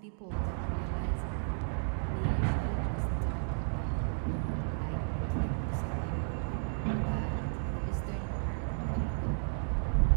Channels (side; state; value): left; silent; digital silence